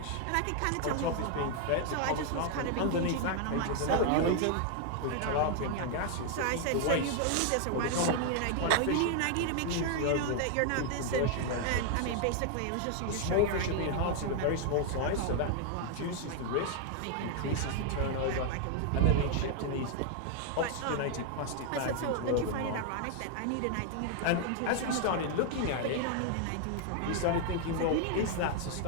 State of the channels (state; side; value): different; both; correlation 0.00